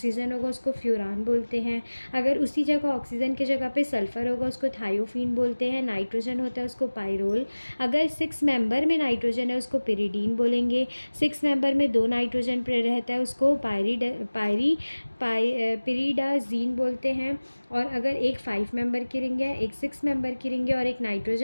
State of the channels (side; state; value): both; inverted; correlation -1.00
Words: होगा, उसको फ्यूरान बोलते हैं. अगर उसी जगह ऑक्सीजन की जगह पे सल्फ़र होगा उसको थायोफीन बोलते हैं. नाइट्रोजन होता है उसको पायरोल. अगर 6 मेंबर में नाइट्रोजन है उसको पिरिडीन बोलेंगे. 6 मेंबर में 2 नाइट्रोजन रहता है उसको पिरिडाजीन बोलते हैं. और अगर एक 5 मेंबर की रिंग है, एक 6 मेंबर की रिंग है और एक